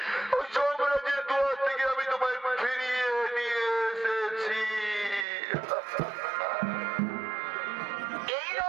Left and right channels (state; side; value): drops out; left; at 5.2 s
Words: ওই যমরাজের দুয়ার থেকে আমি তোমায় ফিরিয়ে নিয়ে এসেছি। এই